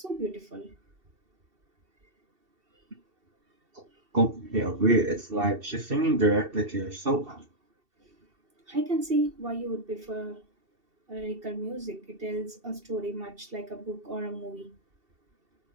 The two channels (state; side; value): late; left; 2.7 ms